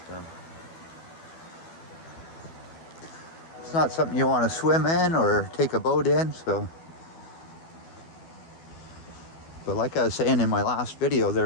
So it's not something you want to swim in or take a boat in. But like I was saying in my last video,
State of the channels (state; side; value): late; right; 12 ms